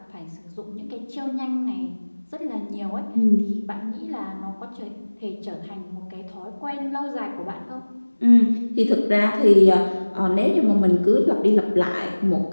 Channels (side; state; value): both; inverted; correlation -1.00